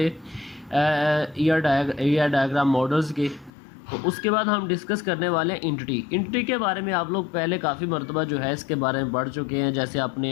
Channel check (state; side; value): drops out; right; at 3.5 s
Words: ईआर डायग्राम मॉडल्स के। तो उसके बाद हम डिस्कस करने वाले हैं इंटिटी के बारे में। आप लोग पहले काफ़ी मरतबा जो है इसके बारे में पढ़ चुके हैं, जैसे